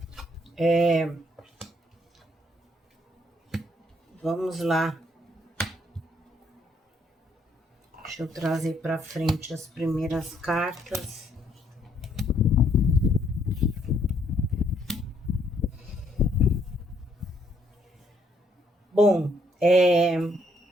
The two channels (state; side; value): normal; both; correlation 0.69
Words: vamos lá. Deixa eu trazer para frente as primeiras cartas. Bom,